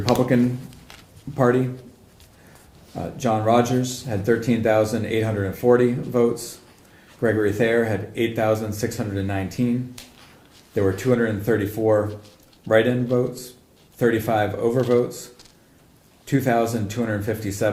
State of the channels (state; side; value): identical; both; correlation 1.00